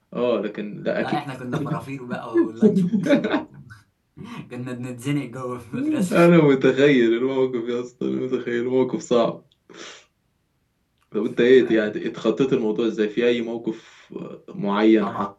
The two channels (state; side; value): identical; both; correlation 1.00